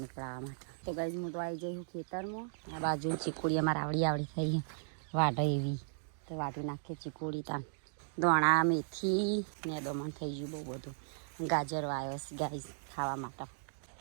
પડાવવા માટે. તો ગાઈઝ હું તો આવી જઈ હું ખેતરમાં. આ બાજુ ચીકુડી અમારે આવડી થઈ વાઢ એવી તો વાઢી નાખીએ ચીકુડી તાન દોણા મેથી ને દમણ થઈ ગયું બહુ બધું. ગાજર વાવ્યો છે ગાઈઝ ખાવા માટે,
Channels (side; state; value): left; silent; digital silence